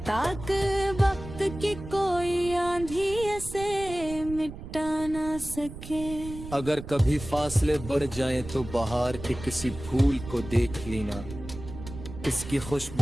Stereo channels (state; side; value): noise; right; rumble, 12 dB below the sound